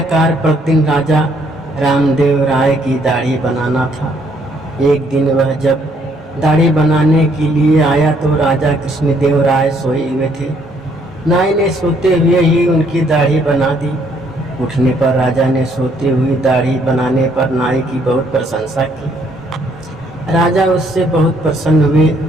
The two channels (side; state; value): both; normal; correlation 0.67